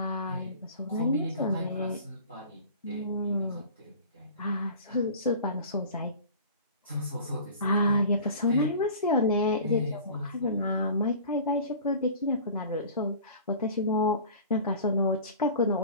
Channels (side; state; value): both; inverted; correlation -0.41